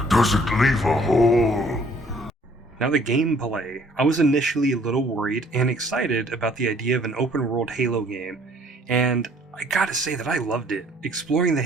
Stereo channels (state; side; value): normal; both; correlation 0.59